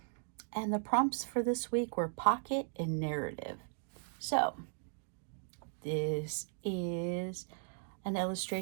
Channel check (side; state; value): left; silent; digital silence